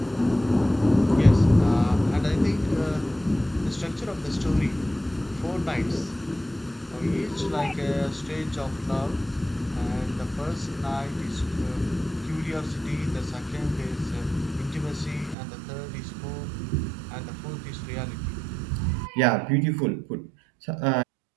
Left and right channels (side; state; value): left; drops out; at 15.4 s